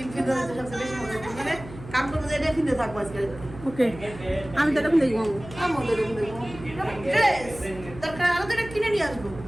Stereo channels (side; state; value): right; noise; hum, 15 dB below the sound